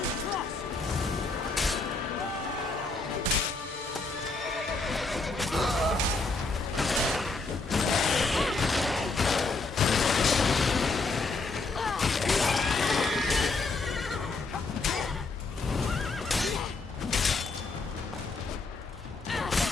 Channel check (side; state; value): right; quieter; 3.7 dB